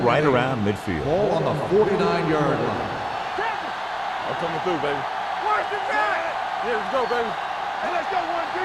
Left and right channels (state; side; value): identical; both; correlation 1.00